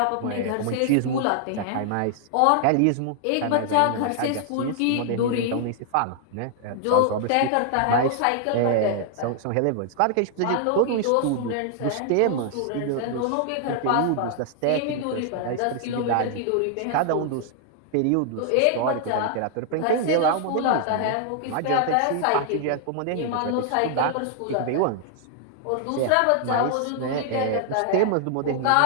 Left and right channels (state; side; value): different; both; correlation 0.00